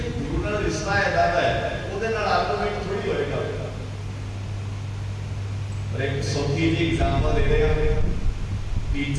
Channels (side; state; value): both; identical; correlation 1.00